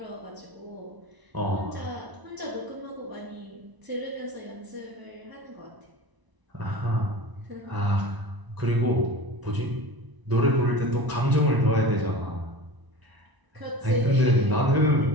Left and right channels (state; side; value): late; left; 1.0 ms